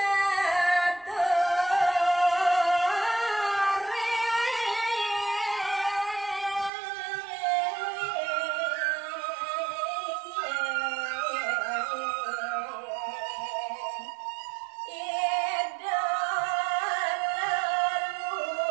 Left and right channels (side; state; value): left; drops out; at 6.7 s